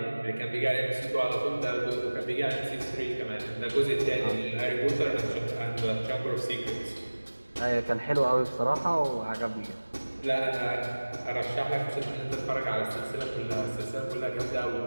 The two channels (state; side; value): inverted; both; correlation -1.00